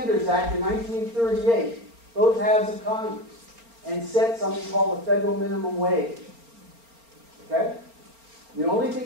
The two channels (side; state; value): left; late; 4.3 ms